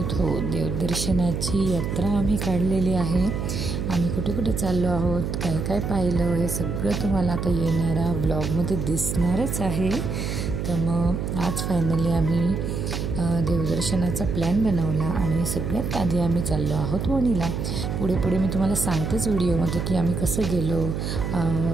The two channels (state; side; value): noise; right; hum, 3 dB below the sound